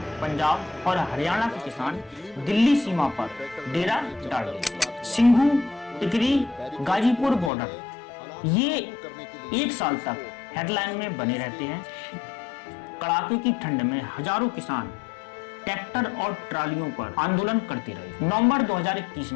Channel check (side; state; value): right; drops out; at 7.5 s